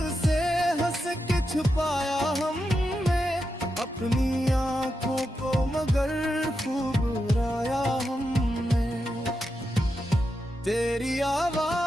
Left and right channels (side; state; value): both; normal; correlation 0.87